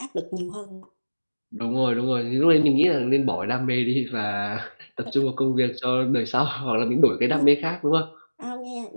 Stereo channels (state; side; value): inverted; both; correlation -1.00